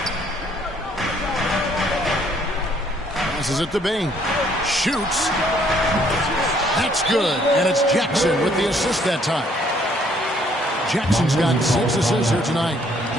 Passes it to Bane. Shoots. That's good. And it's Jackson with the assist that time. Jackson's got 6 assists here tonight.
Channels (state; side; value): normal; both; correlation 0.65